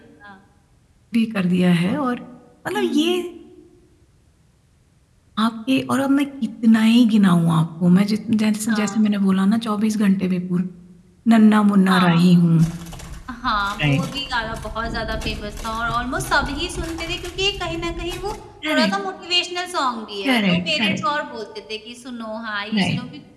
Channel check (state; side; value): identical; both; correlation 1.00